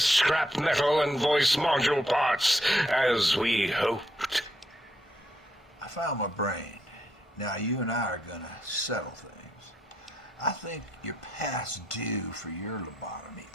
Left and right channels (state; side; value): normal; both; correlation 0.77